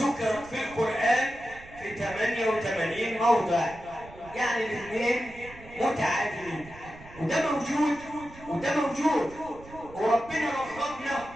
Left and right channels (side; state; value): right; noise; rumble, 19 dB below the sound